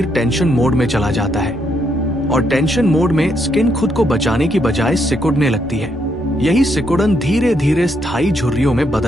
टेंशन मोड में चला जाता है और टेंशन मोड में स्किन खुद को बचाने की बजाय सिकुड़ने लगती है। यही सिकुड़न धीरे धीरे स्थायी झुर्रियों में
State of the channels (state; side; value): noise; left; rumble, 21 dB below the sound